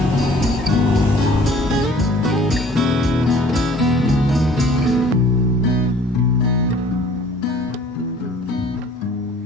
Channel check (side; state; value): both; normal; correlation 0.53